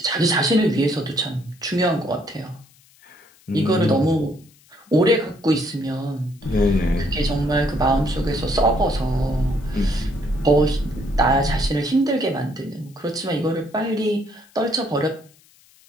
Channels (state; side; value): noise; left; hiss, 29 dB below the sound